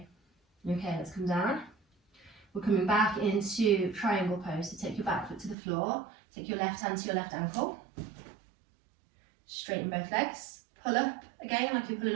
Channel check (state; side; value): drops out; left; at 5.6 s